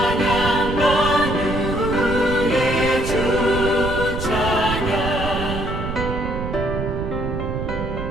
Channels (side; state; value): right; noise; rumble, 4 dB below the sound